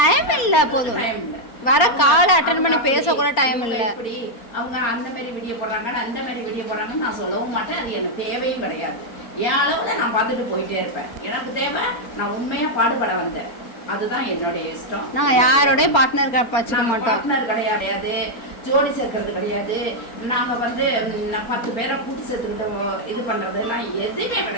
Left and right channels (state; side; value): late; right; 4.3 ms